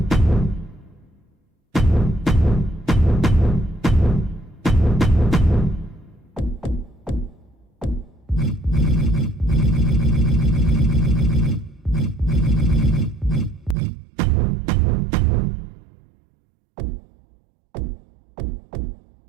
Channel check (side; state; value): left; drops out; at 13.8 s